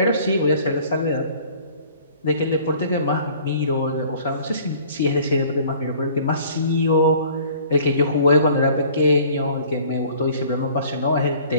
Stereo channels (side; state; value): both; inverted; correlation -0.51